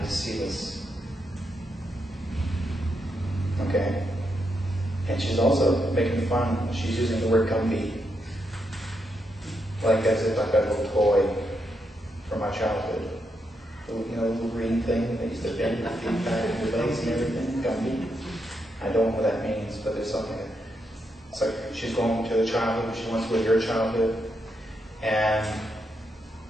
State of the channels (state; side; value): normal; both; correlation 0.82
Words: to see this. Okay? And she's also making fun. She's using the word Gumby. Like as if I've got a little toy from my childhood. You know, the little green thing that used to bend your feet back in your legs and everything. Gumby. I don't know what that means, but there's something. It's like she's going to the childhood. She wants to go to your childhood. And